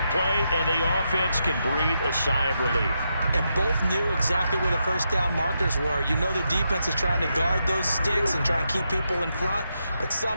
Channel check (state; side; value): inverted; both; correlation -0.84